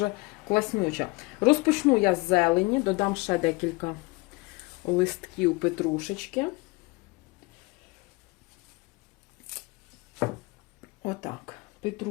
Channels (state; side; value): quieter; right; 25.3 dB